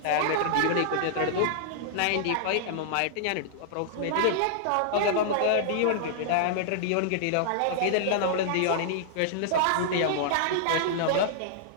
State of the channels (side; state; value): both; different; correlation -0.01